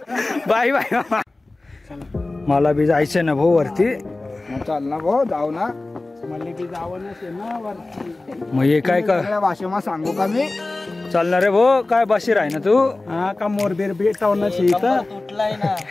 Bye bye. मला बी जायचंय ना भाऊ वरती. चाल ना भाऊ, जाऊ ना. मला बी जावं ना वरती. मग हे काय का सगळ्या भाषेमा सांगू का मी? चालणार रे भाऊ? काय बशीर आहे ना तू? हा का मोरबीर भेटावं तुटलाय ना.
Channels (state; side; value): quieter; right; 3.1 dB